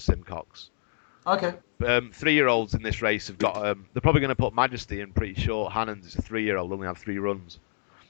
Okay. 3-year-olds in this race have got. They're probably going to put Majesty in pretty short. Hannon's is a 3-year-old. Only had 3 runs.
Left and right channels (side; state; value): right; silent; 59 dB below the other